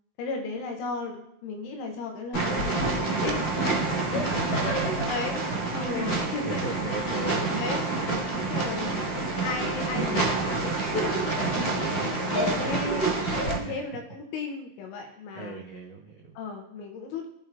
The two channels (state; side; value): late; right; 19 ms